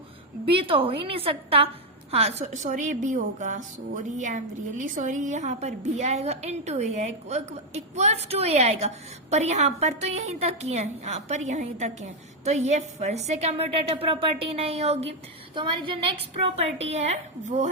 बी, तो हो ही नहीं सकता। हाँ सॉरी बी होगा, sorry I am really sorry, यहाँ पर बी आएगा इंटू ए है इक्वल्स टू ए आएगा, पर यहाँ पर तो यहीं तक ही है, यहाँ पर यहीं तक है, तो ये फिर से कम्यूटेटिव प्रॉपर्टी नहीं होगी। तो हमारी जो नेक्स्ट प्रॉपर्टी है वो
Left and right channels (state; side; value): normal; both; correlation 0.04